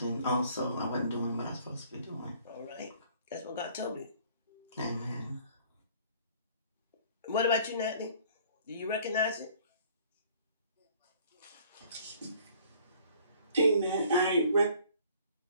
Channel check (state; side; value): inverted; both; correlation -0.55